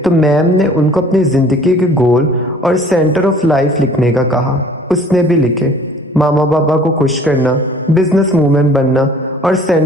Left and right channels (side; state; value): both; normal; correlation 0.51